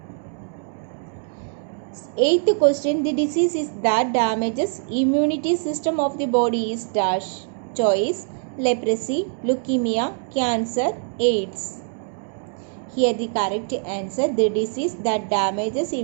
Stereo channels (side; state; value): left; silent; 63 dB below the other